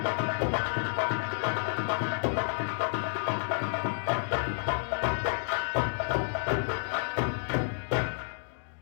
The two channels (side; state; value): right; silent; digital silence